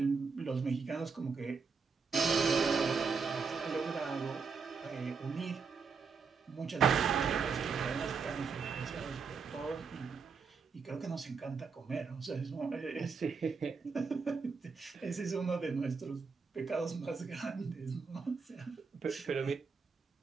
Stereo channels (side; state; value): left; quieter; 5.3 dB